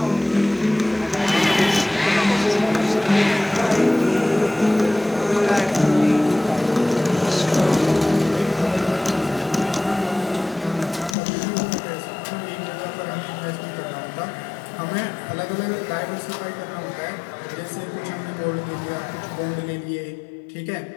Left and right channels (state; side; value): drops out; right; at 11.2 s